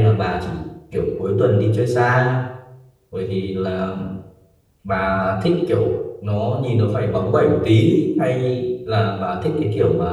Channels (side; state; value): both; identical; correlation 1.00